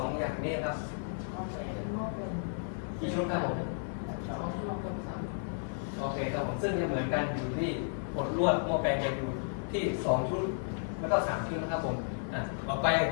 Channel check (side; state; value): right; silent; 56 dB below the other